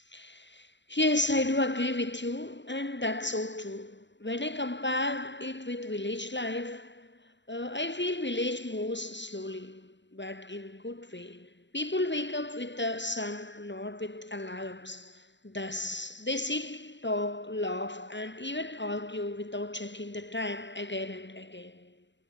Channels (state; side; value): late; right; 0.53 ms